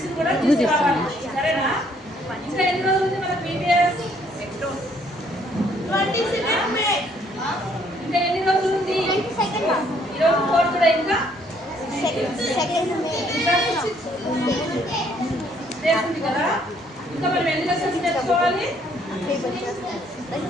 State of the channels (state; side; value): normal; both; correlation 0.65